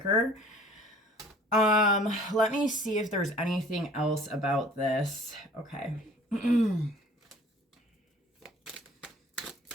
Let me see if there's anything else about this. Okay.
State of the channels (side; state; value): both; normal; correlation 0.51